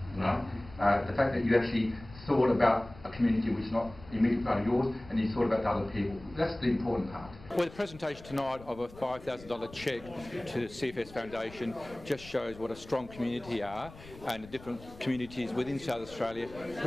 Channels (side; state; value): left; noise; rumble, 18 dB below the sound